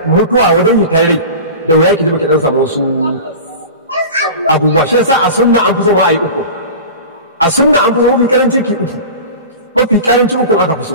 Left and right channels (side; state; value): both; inverted; correlation -0.34